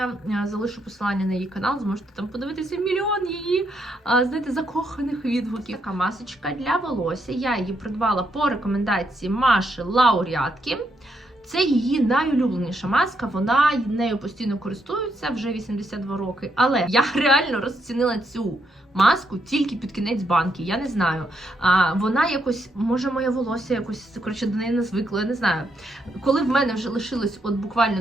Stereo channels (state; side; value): normal; both; correlation 0.78